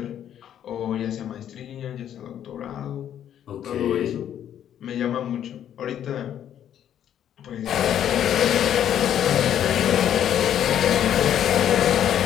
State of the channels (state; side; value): quieter; right; 10.2 dB